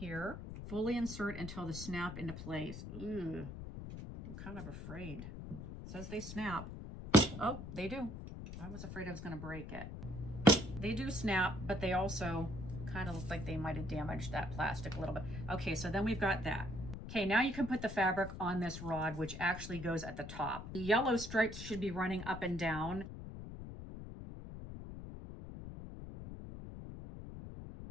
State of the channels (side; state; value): left; noise; rumble, 9 dB below the sound